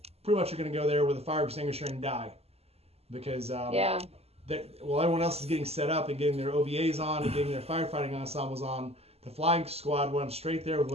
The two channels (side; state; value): left; late; 0.29 ms